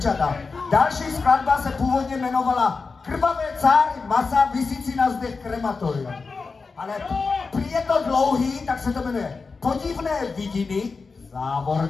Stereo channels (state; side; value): quieter; right; 4.5 dB